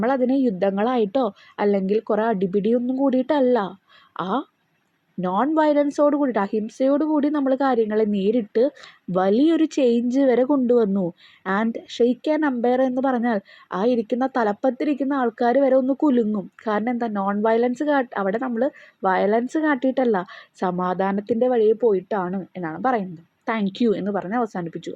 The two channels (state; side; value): identical; both; correlation 1.00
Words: യുദ്ധങ്ങളായിട്ടോ അല്ലെങ്കിൽ കുറേ അടിപിടിയൊന്നും കൂടിയിട്ടല്ല, ആ നോൺ വയലൻസോട് കൂടിയിട്ട്, അഹിംസയോട് കൂടി നമ്മൾ കാര്യങ്ങളെ നേരിട്ട് വലിയൊരു ചേഞ്ച് വരെ കൊണ്ടുവന്നു. ആൻഡ് ഷെയ്ക്ക് ആൻ അമ്പയർ എന്ന് പറഞ്ഞാൽ ആ ഇരിക്കുന്ന തലപ്പത്തിരിക്കുന്ന ആൾക്കാർ വരെ ഒന്ന് കുലുങ്ങും. കാരണം എന്താ, നോൺ വയലൻസ് അവിടെ നമ്മൾ വയലൻസ് കാട്ടിയിട്ടല്ല, സമാധാനത്തിൻ്റെ വഴിയെ പോയിട്ടാണ് എന്നാണ് പറയുന്നത്. താങ്ക് യു എന്ന് പറഞ്ഞ് അവസാനിപ്പിച്ചു.